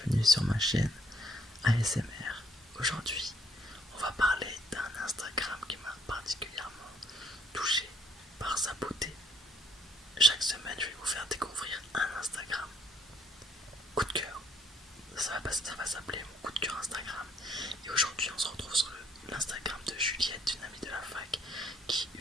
sur ma chaîne ASMR. Aujourd'hui, on va parler d'un Instagram qui m'a particulièrement touché par sa beauté. Chaque semaine, je vais vous faire découvrir un Instagram. Coup de cœur, ça va s'appeler mon coup de cœur Instagram. Et aujourd'hui, on se retrouve sur l'Instagram de Juliette, une amie de la fac, qui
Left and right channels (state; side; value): normal; both; correlation 0.66